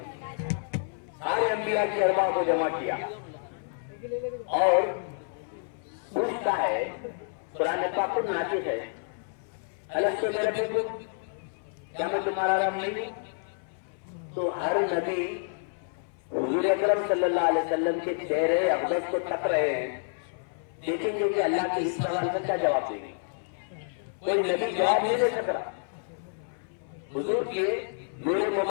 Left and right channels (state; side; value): silent; right; 57 dB below the other